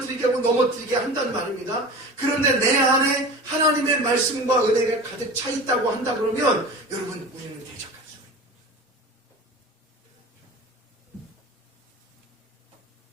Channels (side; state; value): both; normal; correlation 0.34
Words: 하고 넘어뜨리게 한단 말입니다. 그런데 내 안에 하나님의 말씀과 은혜가 가득 차 있다고 한다 그러면 여러분 우리는 대적할 수가 있습니다.